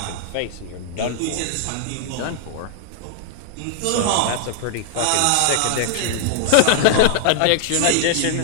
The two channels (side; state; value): both; different; correlation 0.00